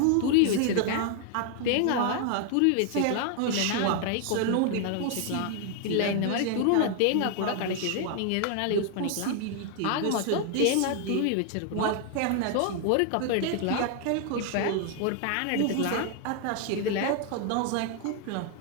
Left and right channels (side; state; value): both; different; correlation 0.00